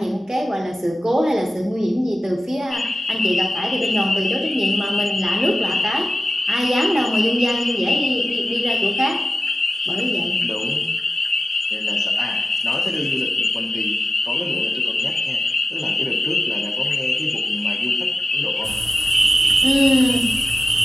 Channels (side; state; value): both; normal; correlation 0.93